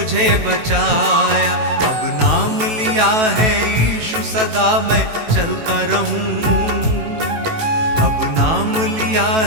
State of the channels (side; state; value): left; late; 18 ms